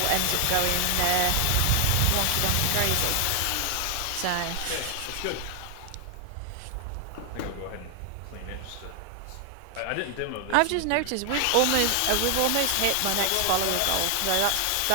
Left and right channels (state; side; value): different; both; correlation 0.00